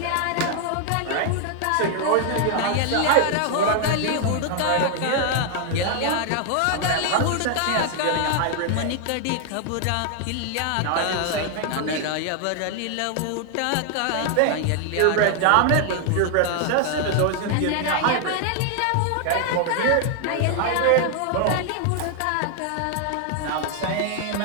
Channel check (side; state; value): both; different; correlation 0.00